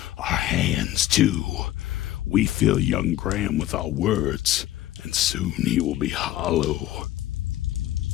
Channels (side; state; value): right; quieter; 14.2 dB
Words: our hands too. We fill young Graham with our words, and soon he will be hollow.